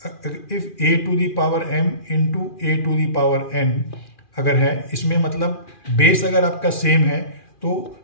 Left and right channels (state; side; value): late; right; 2.4 ms